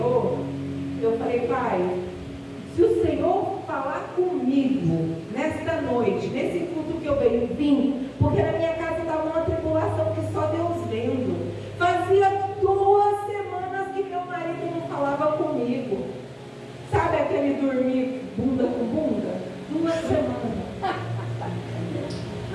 eu falei: Pai, se o Senhor falar comigo nesta noite, nesse culto que eu venho, vim, porque na minha casa estava uma tribulação que só Deus vendo. Fazia 2 semanas que meu marido não falava comigo. Sabe aquele dormir bunda com bunda? 2 semanas.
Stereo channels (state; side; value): identical; both; correlation 1.00